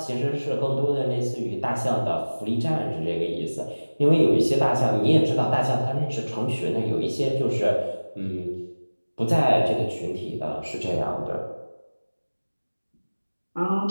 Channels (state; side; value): inverted; both; correlation -1.00